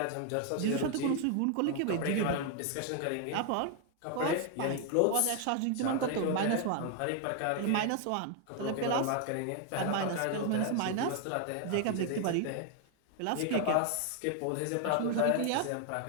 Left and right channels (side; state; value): both; different; correlation 0.00